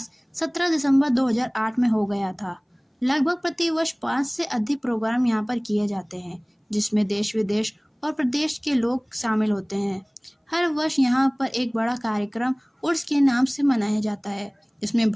17 दिसंबर 2008 में हो गया था। लगभग प्रतिवर्ष 5 से अधिक प्रोग्राम यहाँ पर किए जाते हैं, जिसमें देश विदेश और प्रदेश के लोग शामिल होते हैं। हर वर्ष यहाँ पर एक बड़ा कार्यक्रम उर्स के नाम से मनाया जाता है। इसमें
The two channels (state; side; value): identical; both; correlation 1.00